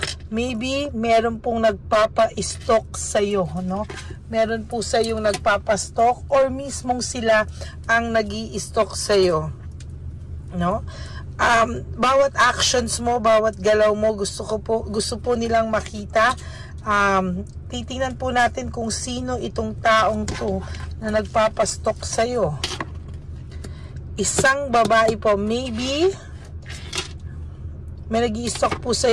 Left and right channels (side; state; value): both; identical; correlation 1.00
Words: Maybe meron pong nagpapa-stalk sa iyo, no? Meron po sa yung nagpapa-stalk or mismong sila ang nag-i-stalk sa iyo, no? Bawat actions mo, bawat galaw mo, gusto po nilang makita. Titingnan po natin kung sino itong taong to na nagpapastok sa'yo. Isang babae po, maybe may nag-i-stalk po